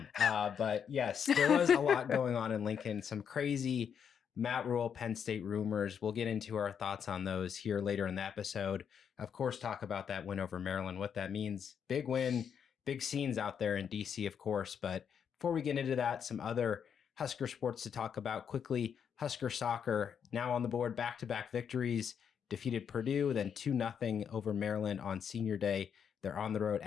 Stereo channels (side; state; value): right; quieter; 7.6 dB